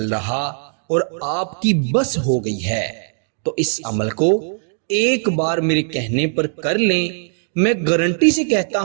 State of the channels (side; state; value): left; silent; digital silence